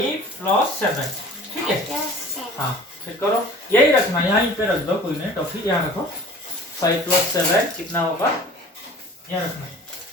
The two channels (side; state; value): both; normal; correlation 0.45